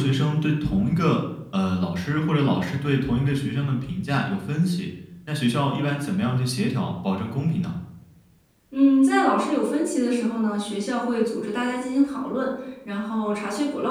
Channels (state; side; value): identical; both; correlation 1.00